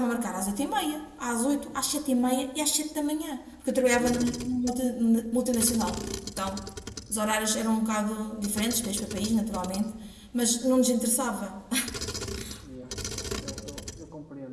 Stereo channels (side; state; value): both; identical; correlation 1.00